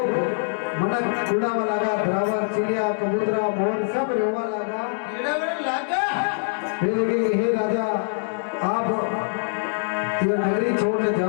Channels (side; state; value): right; silent; digital silence